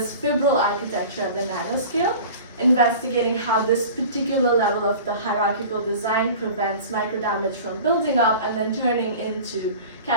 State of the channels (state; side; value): inverted; both; correlation -0.39